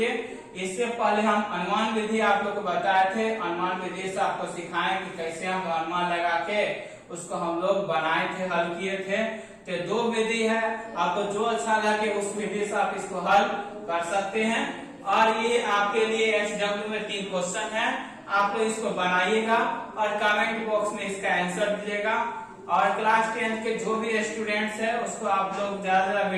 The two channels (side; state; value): both; identical; correlation 1.00